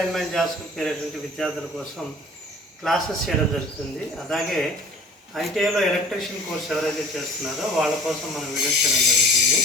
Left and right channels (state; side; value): normal; both; correlation 0.48